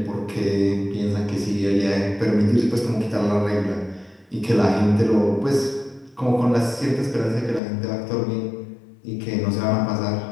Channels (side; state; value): right; drops out; at 7.6 s